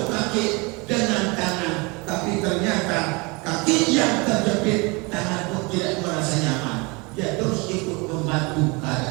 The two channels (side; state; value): left; quieter; 27.7 dB